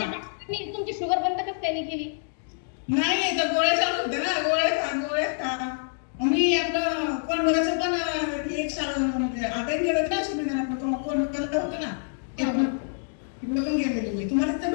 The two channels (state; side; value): silent; right; digital silence